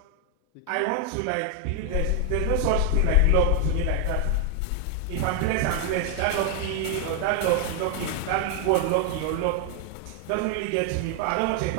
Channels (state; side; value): different; both; correlation 0.00